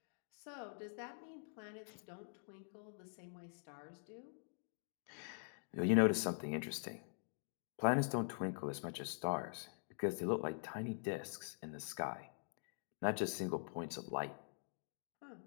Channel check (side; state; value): right; silent; digital silence